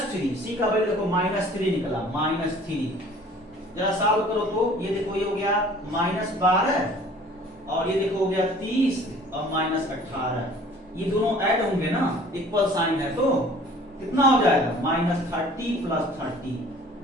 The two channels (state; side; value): normal; both; correlation 0.50